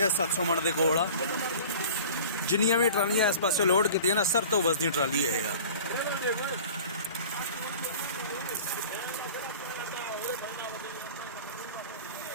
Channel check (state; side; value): inverted; both; correlation -0.42